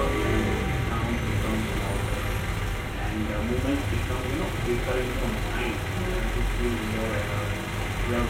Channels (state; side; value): identical; both; correlation 1.00